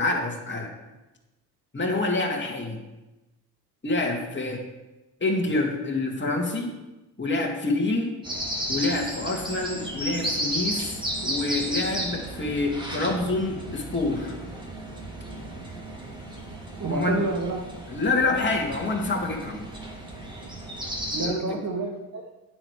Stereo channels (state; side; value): normal; both; correlation 0.24